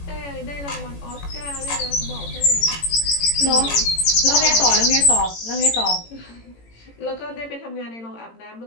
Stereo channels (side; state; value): right; late; 18 ms